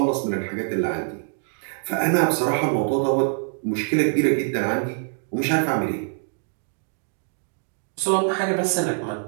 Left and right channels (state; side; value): silent; left; 62 dB below the other